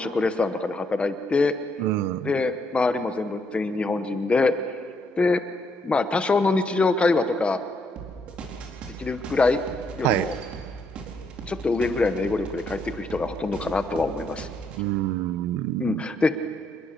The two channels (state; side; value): normal; both; correlation 0.73